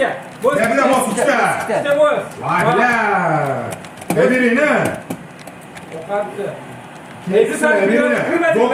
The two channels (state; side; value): identical; both; correlation 1.00